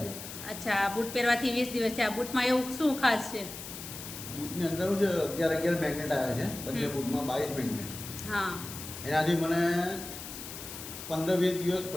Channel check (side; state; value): left; noise; hiss, 10 dB below the sound